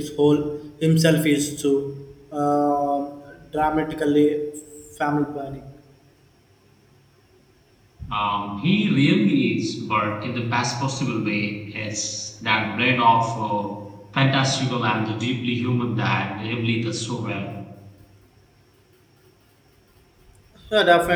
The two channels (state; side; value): identical; both; correlation 1.00